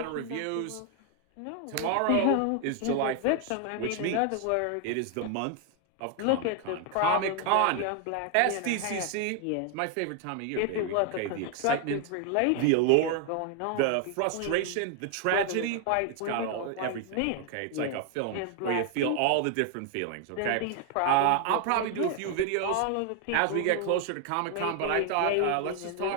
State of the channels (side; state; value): both; different; correlation 0.00